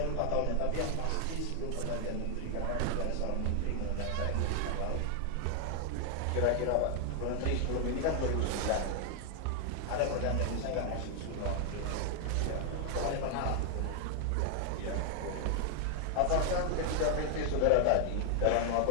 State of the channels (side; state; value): both; different; correlation 0.00